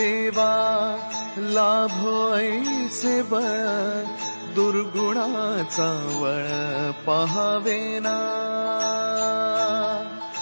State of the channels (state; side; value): inverted; both; correlation -1.00